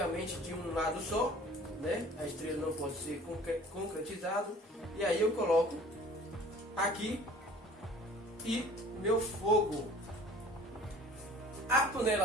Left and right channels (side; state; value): both; normal; correlation 0.48